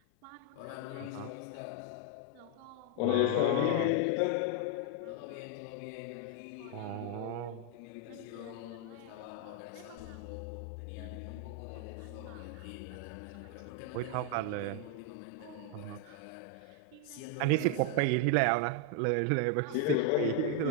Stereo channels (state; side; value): different; both; correlation 0.01